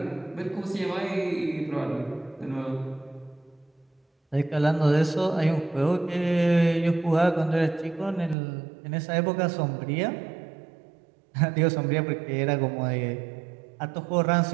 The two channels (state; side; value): drops out; left; at 8.3 s